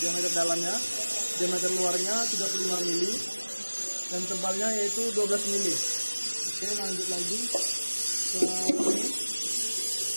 diameter dalamnya, diameter luarnya 35 mili, dan tebalnya yaitu 12 mili. Oke, lanjut lagi.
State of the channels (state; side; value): inverted; both; correlation -1.00